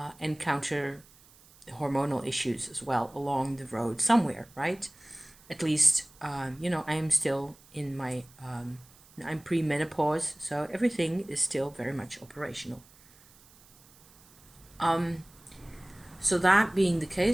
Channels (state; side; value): noise; right; hiss, 26 dB below the sound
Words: encounter hormonal issues as well along the road somewhere, right? At least, I am still in my, I'm pre-menopause, so everything is still very much operational. So that being the